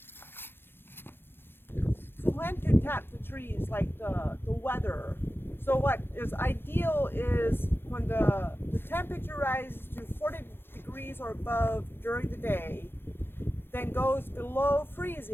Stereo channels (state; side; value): late; right; 0.10 ms